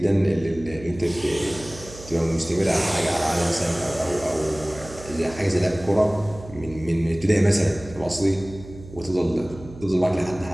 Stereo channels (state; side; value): noise; right; hum, 16 dB below the sound